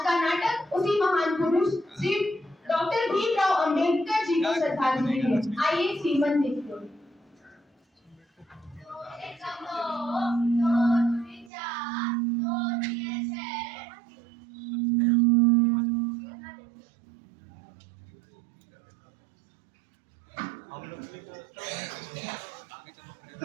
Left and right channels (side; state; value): left; drops out; at 11.5 s